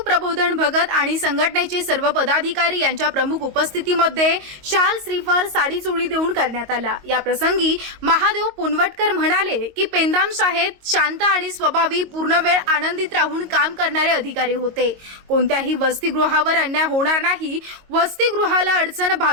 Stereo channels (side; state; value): left; late; 22 ms